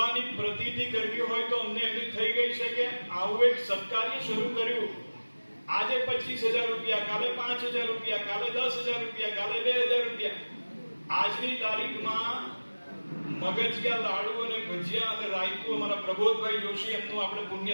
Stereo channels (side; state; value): both; inverted; correlation -1.00